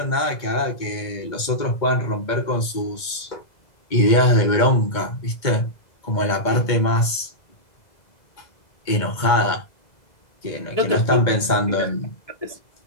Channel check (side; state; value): right; late; 2.2 ms